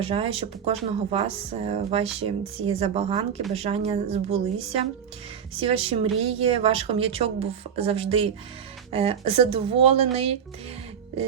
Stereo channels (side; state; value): left; quieter; 7.9 dB